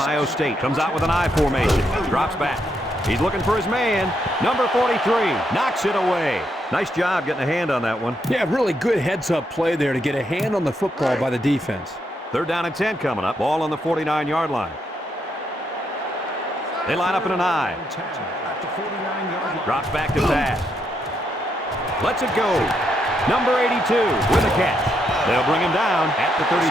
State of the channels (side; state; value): both; normal; correlation 0.78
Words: State comes out with an I formation. Drops back. He's looking for his man. Number 43 knocks it away. Nice job getting a hand on that one. Yeah, really good heads-up play there to get a hand on the football by the defense. 3rd down and 10 coming up. Ball on the 49-yard line. They line up in an I. Drops back to pass. Lets it go. Number 82 with a catch. They'll bring him down at the 33.